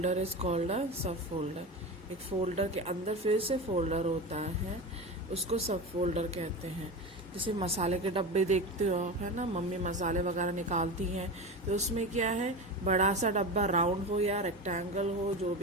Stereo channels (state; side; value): normal; both; correlation 0.25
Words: is called a सब फोल्डर। एक फोल्डर के अंदर फिर से फोल्डर होता है, उसको सब फोल्डर कहते हैं। जैसे मसाले के डब्बे देखते हो आप, है ना, मम्मी मसाले वगैरह निकालती हैं तो उसमें क्या है, बड़ा सा डब्बा राउंड हो या रेक्टेंगल हो, जो